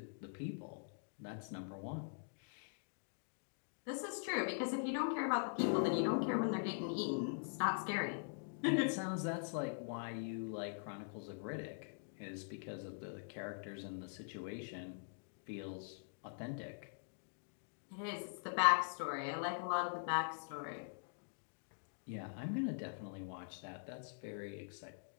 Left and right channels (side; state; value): right; silent; digital silence